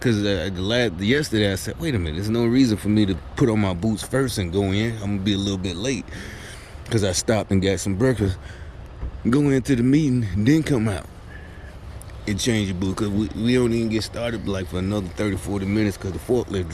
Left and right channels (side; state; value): both; identical; correlation 1.00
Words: yesterday I said, wait a minute, there's no reason for me to put on my boots first and go in. I'm going to be a little bit late because I stopped and got some breakfast. Go into the meeting, then come out and change your boots, because we don't even get started like for another 30, 40 minutes because the forklift